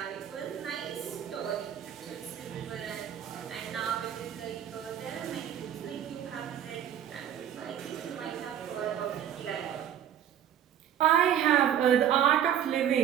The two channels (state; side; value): quieter; left; 9.9 dB